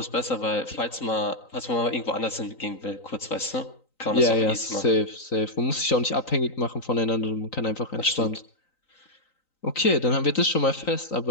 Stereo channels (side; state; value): right; late; 3.9 ms